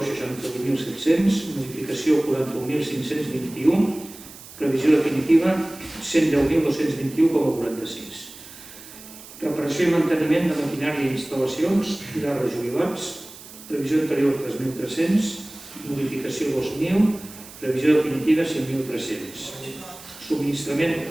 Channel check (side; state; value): right; noise; hiss, 17 dB below the sound